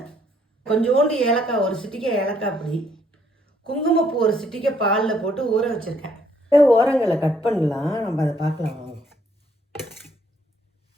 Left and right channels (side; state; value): both; normal; correlation 0.68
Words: கொஞ்சோண்டு ஏலக்காய், ஒரு சிட்டிக்கை ஏலக்காய் பொடி, குங்குமப்பூ ஒரு சிட்டிக்கை பாலில் போட்டு ஊற வச்சுருக்கேன். ஓரங்களை கட் பண்ணலாம், நம்ம அதை பார்க்கலாம் வாங்க.